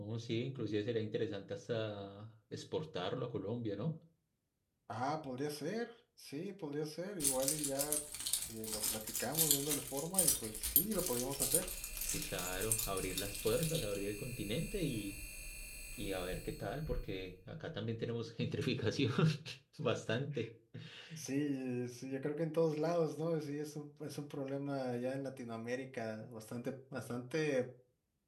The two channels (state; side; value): identical; both; correlation 1.00